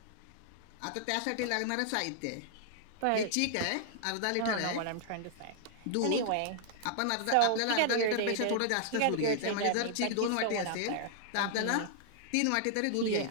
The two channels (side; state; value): both; different; correlation -0.01